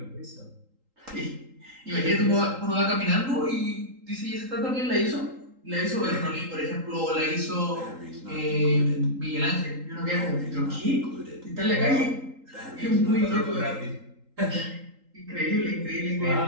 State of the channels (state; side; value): late; left; 3.8 ms